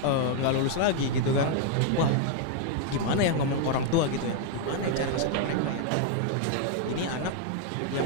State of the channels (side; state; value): both; different; correlation 0.00